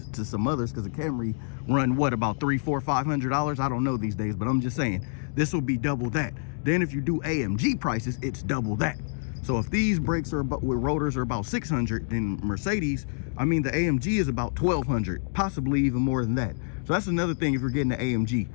some others, because a Camry run what, about $300, $400, $500? I don't know these days, but I'm just saying this will be double that. Then if you do AMG prices, it's double that. So if these brakes are about, with rotors are about 600, then Mercedes, I mean the AMG is about 1200, possibly even more than that. So that's another thing. If you're getting the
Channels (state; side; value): silent; right; digital silence